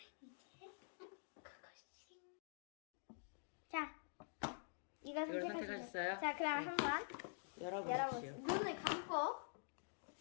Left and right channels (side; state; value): right; silent; digital silence